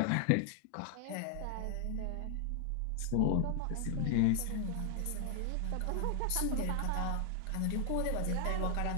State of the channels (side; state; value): both; different; correlation 0.00